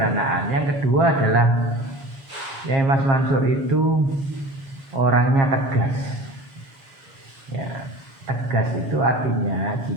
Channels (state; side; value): late; left; 7.0 ms